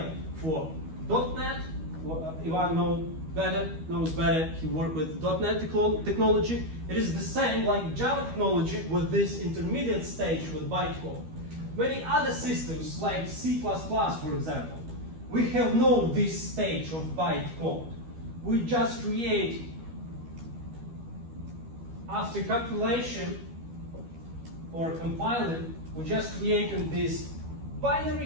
for .NET. Ivan knows better. He worked with .NET technology. It is the same like Java technology with this intermediate stage with bytecode. Many other systems like C++, for example, we have no this stage of bytecode. We just create, after compilation or compiling, we just create this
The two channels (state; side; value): late; left; 12 ms